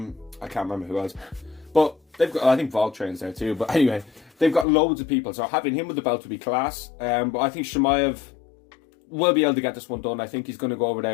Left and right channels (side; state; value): right; drops out; at 4.7 s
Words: can't remember who else, but they've got, I think Voltrain's there too. But anyway, they've got loads of people, so having him with the belt would be class. But I think Chimaev will be able to get this one done. I think he's going to go over